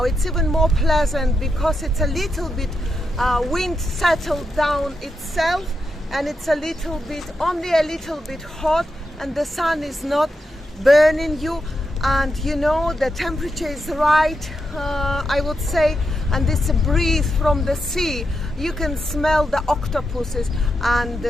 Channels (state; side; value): normal; both; correlation 0.85